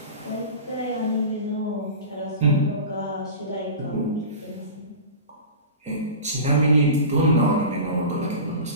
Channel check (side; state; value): both; inverted; correlation -0.32